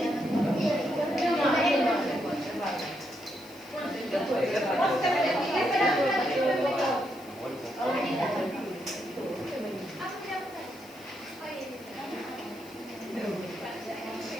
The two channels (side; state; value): left; noise; hiss, 22 dB below the sound